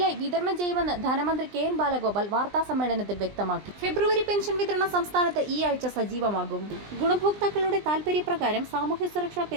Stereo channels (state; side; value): late; left; 20 ms